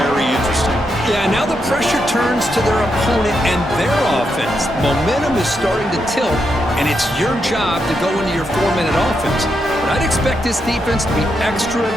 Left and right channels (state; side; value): normal; both; correlation 0.82